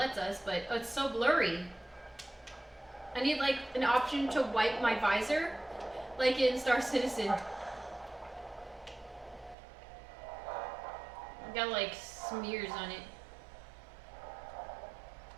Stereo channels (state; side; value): drops out; left; at 9.6 s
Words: us, but it's so blurry. I need like an option to wipe my visor, like in Star Citizen. I've got like smears on it.